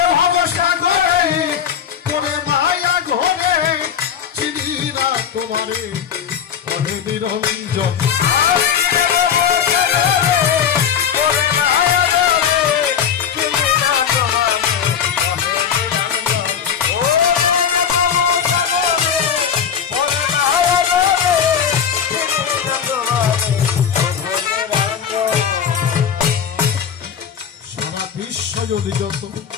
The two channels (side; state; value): right; quieter; 7.9 dB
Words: ভবসাগরে তোরে মায়া ঘরে চিনি না তোমারে প্রভু নিরঞ্জন যদি যত